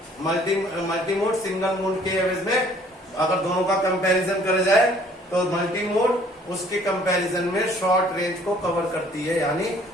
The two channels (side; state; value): both; normal; correlation 0.58